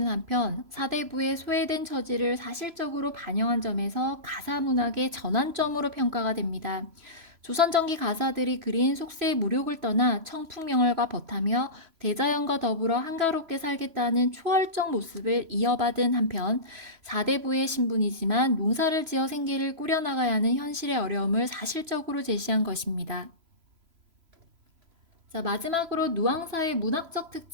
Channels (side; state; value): left; late; 3.0 ms